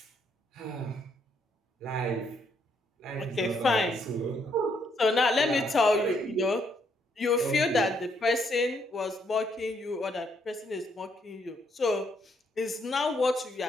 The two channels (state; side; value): normal; both; correlation 0.73